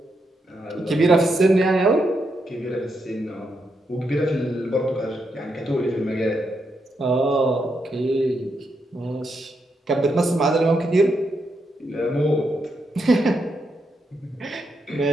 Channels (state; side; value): normal; both; correlation 0.82